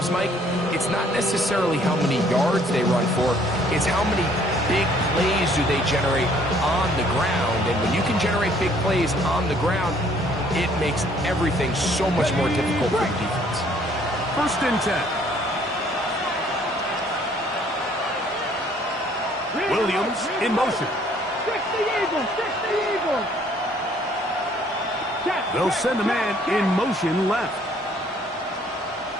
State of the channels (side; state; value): both; normal; correlation 0.61